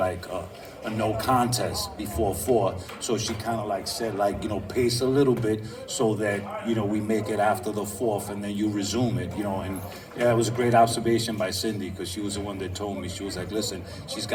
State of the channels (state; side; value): identical; both; correlation 1.00